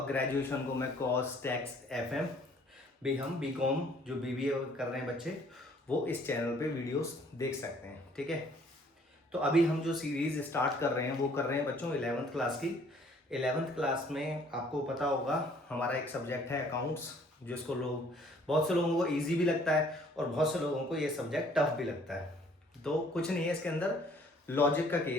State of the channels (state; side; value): normal; both; correlation 0.59